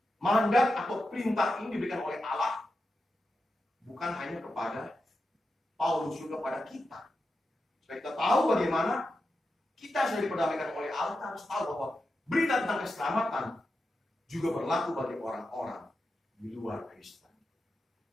Mandat atau perintah ini diberikan oleh Allah, bukan hanya kepada Paulus, juga kepada kita. Supaya kita tahu bagaimana kita sudah diperdamaikan oleh Allah. Kita harus tahu bahwa berita tentang keselamatan juga berlaku bagi orang-orang di luar Kristen.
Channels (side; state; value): both; normal; correlation 0.89